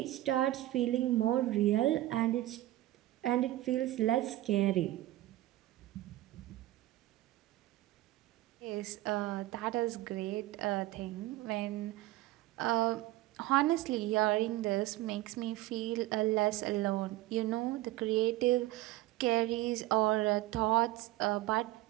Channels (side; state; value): left; quieter; 16.4 dB